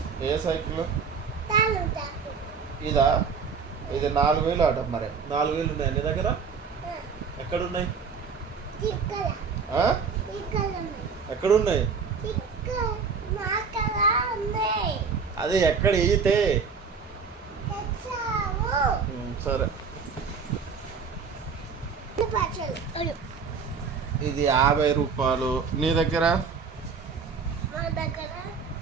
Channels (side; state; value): left; quieter; 5.6 dB